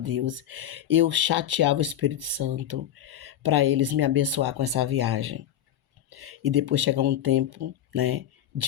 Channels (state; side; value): quieter; right; 10.9 dB